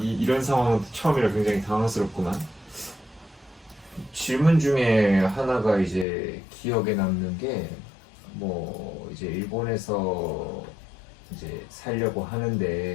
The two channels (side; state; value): right; drops out; at 6.1 s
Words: 상황은 처음이라 굉장히 당황스럽구만. 질문 중에 하나가 이제 기억에 남는 게, 뭐 이제 일본에서 이제 살려고